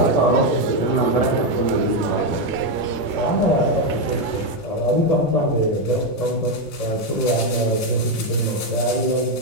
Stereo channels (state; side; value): late; right; 1.9 ms